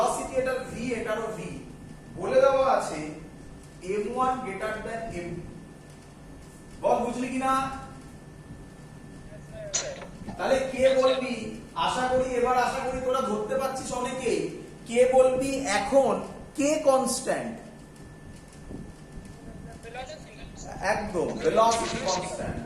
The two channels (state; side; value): identical; both; correlation 1.00